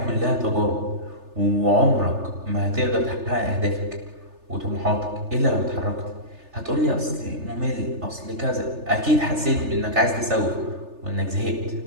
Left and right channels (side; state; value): left; late; 3.3 ms